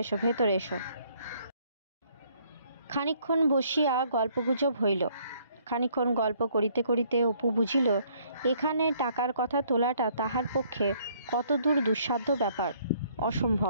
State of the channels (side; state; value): both; inverted; correlation -0.64